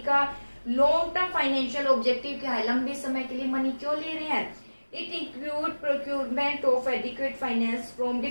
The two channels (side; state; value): both; inverted; correlation -1.00